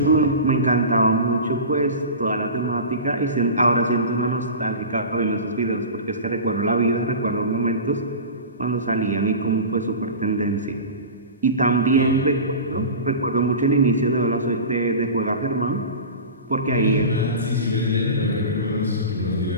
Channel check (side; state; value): both; inverted; correlation -0.32